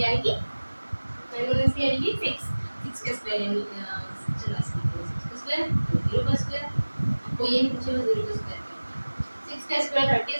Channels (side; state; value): both; inverted; correlation -1.00